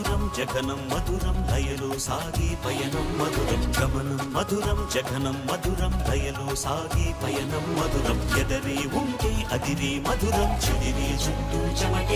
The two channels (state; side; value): identical; both; correlation 1.00